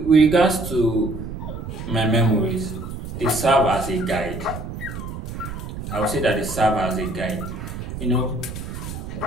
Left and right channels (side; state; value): right; noise; rumble, 8 dB below the sound